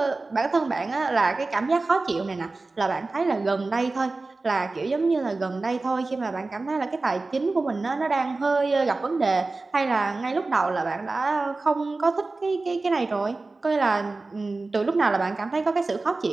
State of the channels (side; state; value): left; quieter; 3.5 dB